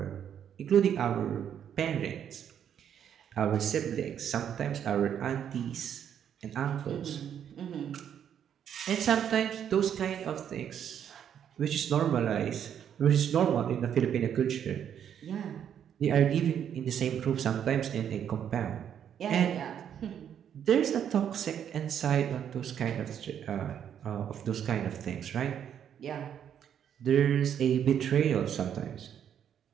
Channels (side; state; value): left; quieter; 9.0 dB